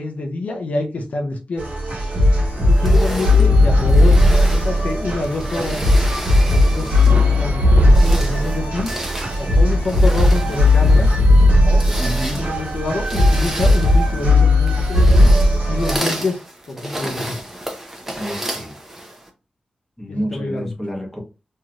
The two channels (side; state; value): both; normal; correlation 0.86